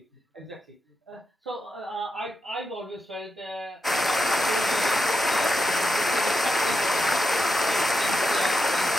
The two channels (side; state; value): both; normal; correlation 0.87